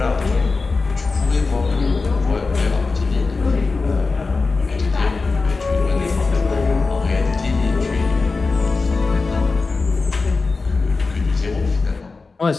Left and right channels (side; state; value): right; quieter; 4.0 dB